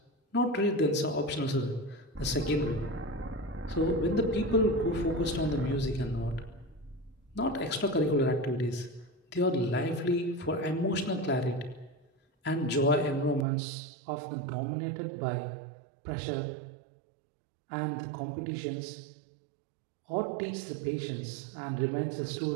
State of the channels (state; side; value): drops out; left; at 13.5 s